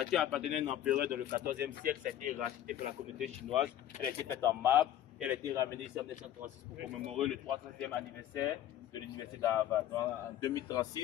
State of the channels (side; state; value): right; quieter; 11.7 dB